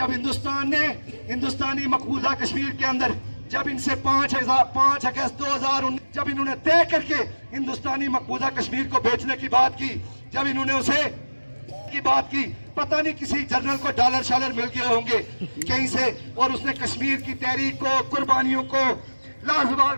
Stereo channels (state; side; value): inverted; both; correlation -1.00